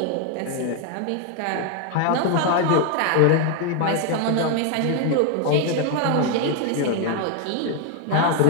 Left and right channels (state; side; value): different; both; correlation 0.01